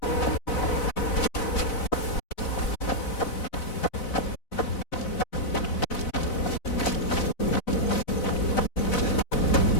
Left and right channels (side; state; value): right; late; 4.0 ms